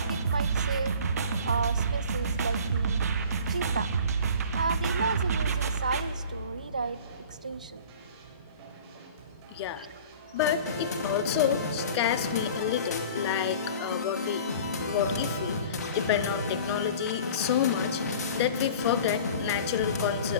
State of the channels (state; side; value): inverted; both; correlation -0.43